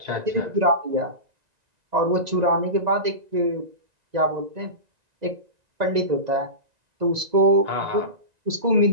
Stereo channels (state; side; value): late; left; 1.9 ms